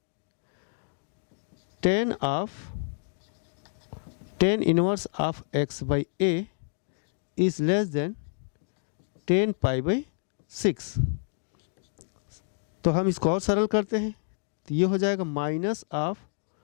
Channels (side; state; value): right; silent; digital silence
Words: 10 inverse of x by a is less then 10 pi by 6। तो हम इसको और सरल करते हैं। तो ये हो जाएगा minus of